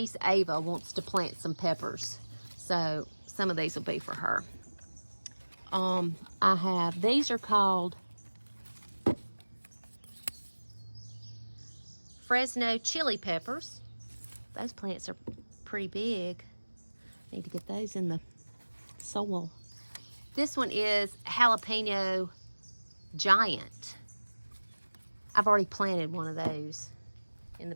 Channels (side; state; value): both; inverted; correlation -1.00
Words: Ava wants to plant some peppers, so some of these will be for her. I have, these are called Fresno chili peppers. Those plants are pretty big. Need to get those in the soil. This one is jalapeno giant. I've already planted one of those in the